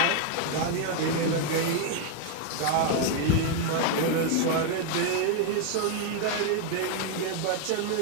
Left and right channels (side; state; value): both; different; correlation 0.01